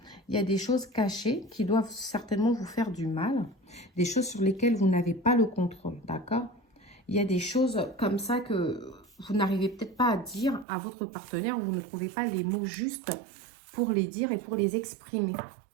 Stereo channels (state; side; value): drops out; left; at 10.7 s